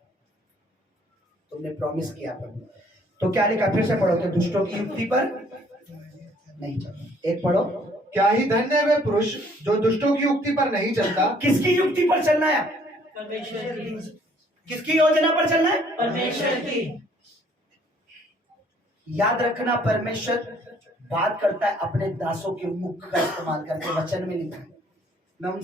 तुमने प्रॉमिस किया प्रभु। तो क्या लिखा, फिर से पढ़ो कि दुष्टों की युक्ति पर नहीं चलो। एक पढ़ो, क्या ही धन्य है वे पुरुष जो दुष्टों की युक्ति पर नहीं चलता। किसकी युक्ति पर चलना है? परमेश्वर की। किसकी योजना पर चलना है? परमेश्वर की। याद रखना, परमेश्वर बात करता है अपने दासों के मुख का इस्तेमाल करके। वचन में लिखा है, मैं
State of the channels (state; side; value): normal; both; correlation 0.61